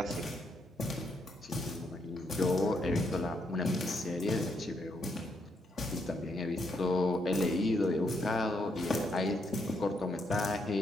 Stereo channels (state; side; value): normal; both; correlation 0.77